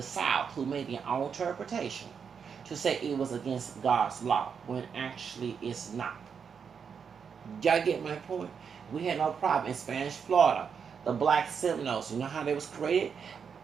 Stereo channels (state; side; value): quieter; left; 6.6 dB